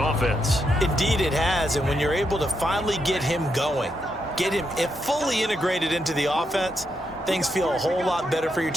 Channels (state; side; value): normal; both; correlation 0.81